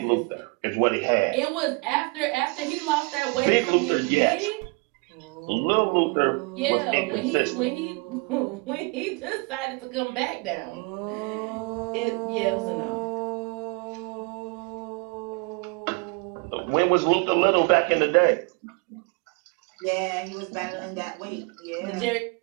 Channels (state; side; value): quieter; left; 29.5 dB